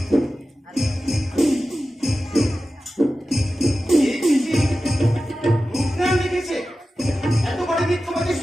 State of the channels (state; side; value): normal; both; correlation 0.94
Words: এই চিঠি মুখরান লিখেছে। এত বড় মিথ্যাবাদী